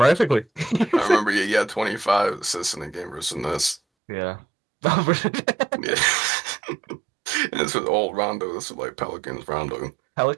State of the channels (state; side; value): drops out; left; at 3.8 s